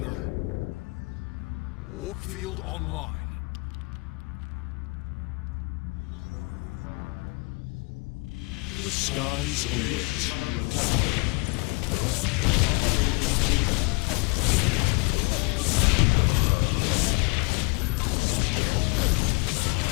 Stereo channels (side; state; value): right; quieter; 29.3 dB